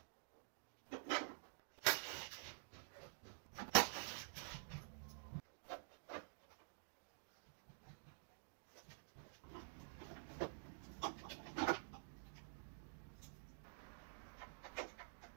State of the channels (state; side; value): silent; left; digital silence